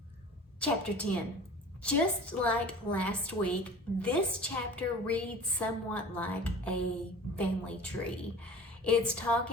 Chapter 10. Just like last week, this chapter reads somewhat like a family tree. It's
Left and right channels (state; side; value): normal; both; correlation 0.42